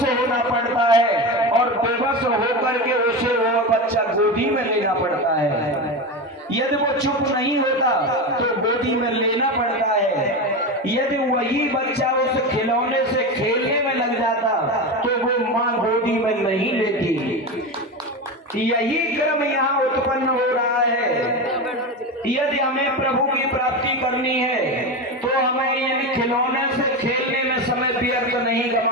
होना पड़ता है और बेबस होकर के उसे वो बच्चा गोदी में लेना पड़ता है। यदि वो चुप नहीं होता तो गोदी में लेना पड़ता है। यदि वही बच्चा उस खिलौने से खेलने में लग जाता तो वो माँ गोदी में नहीं लेती। यही क्रम यहाँ उत्पन्न हो रहा है। यदि हमें प्रभु की प्राप्ति करनी है तो हमें इन खिलौने से खेलने में समय व्यर्थ नहीं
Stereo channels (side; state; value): both; normal; correlation 0.20